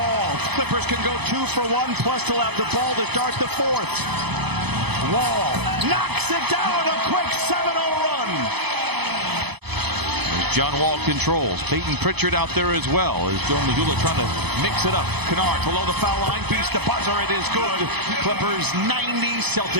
Clippers can go 2 for 1, plus they'll have the ball to start the fourth. Wall knocks it down. A quick 7-0 run. John Wall controls. Peyton Pritchard out there as well. As Joe Mazzulla trying to mix it up. Kennard below the foul line. Beats the buzzer. It is good. Clippers 90,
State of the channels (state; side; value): late; left; 0.98 ms